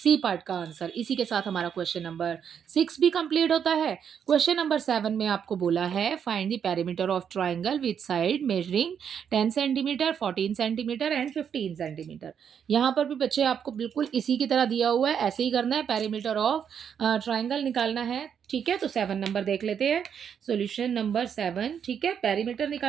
पार्ट का आंसर। इसी के साथ हमारा क्वेश्चन नंबर 6 भी कंप्लीट होता है। क्वेश्चन नंबर 7 में आपको बोला है find the perimeter of triangle with side measuring 10 centimetre, 14 centimetre and 15 centimetre. यहाँ पर भी बच्चे आपको बिल्कुल इसी की तरह दिया हुआ है, ऐसे ही करना है, पेरीमीटर ऑफ ट्राइंगल निकालना है। ठीक है, तो 7 नंबर देख लेते हैं। सॉल्यूशन नंबर 7, ठीक है, पेरीमीटर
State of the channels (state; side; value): quieter; left; 7.9 dB